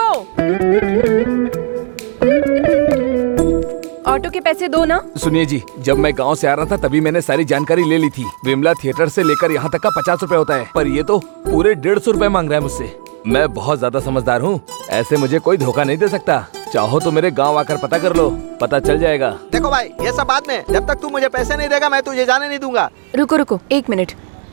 ऑटो के पैसे दो ना। सुनिए जी, जब मैं गांव से आ रहा था तभी मैंने सारी जानकारी ले ली थी। विमला थिएटर से लेकर यहाँ तक का 50 रुपए होता है, पर ये तो पूरे 150 रुपए मांग रहा है मुझसे। मैं बहुत ज्यादा समझदार हूँ, ऐसे मुझे कोई धोखा नहीं दे सकता। चाहो तो मेरे गांव आकर पता कर लो, पता चल जाएगा। देखो भाई, ये सब बाद में, जब तक तू मुझे पैसे नहीं देगा मैं तुझे जाने नहीं दूंगा। रुको रुको, 1 मिनट।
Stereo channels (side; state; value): left; silent; digital silence